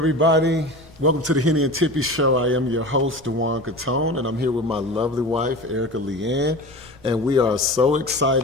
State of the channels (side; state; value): both; normal; correlation 0.33